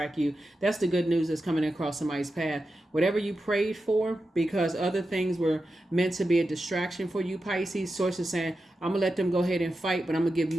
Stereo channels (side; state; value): both; normal; correlation 0.90